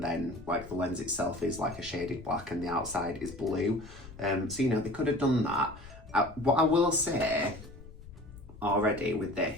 like the lens itself is like a shaded black and the outside is blue. So they could have done that. What I will say already with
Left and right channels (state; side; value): noise; left; rumble, 17 dB below the sound